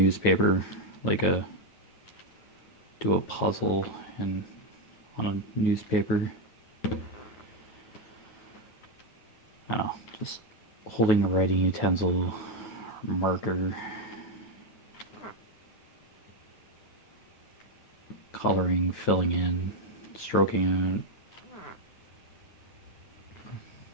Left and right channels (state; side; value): late; right; 9.3 ms